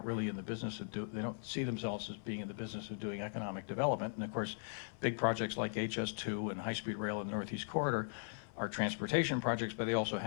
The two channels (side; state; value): right; silent; 52 dB below the other